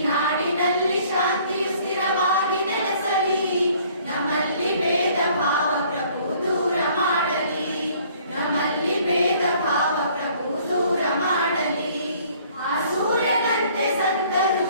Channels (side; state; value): both; inverted; correlation -0.58